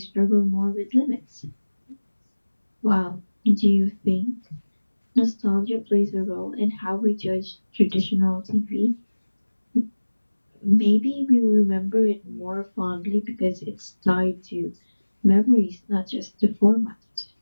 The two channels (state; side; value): inverted; both; correlation -1.00